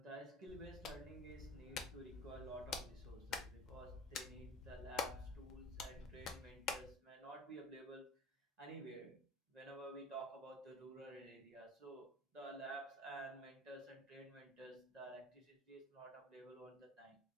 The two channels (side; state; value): both; normal; correlation 0.41